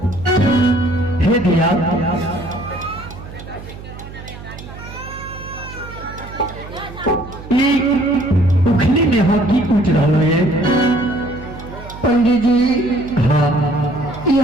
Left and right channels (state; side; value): noise; right; hum, 14 dB below the sound